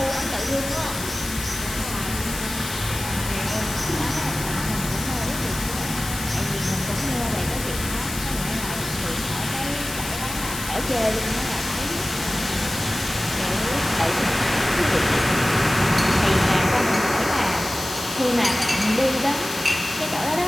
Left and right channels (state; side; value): noise; left; hiss, 8 dB below the sound